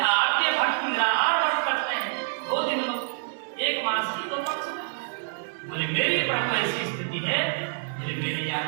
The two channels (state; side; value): silent; left; digital silence